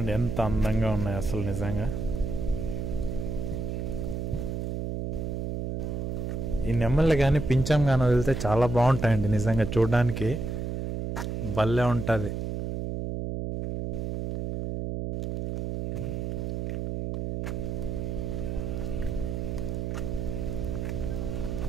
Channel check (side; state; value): right; noise; hum, 2 dB below the sound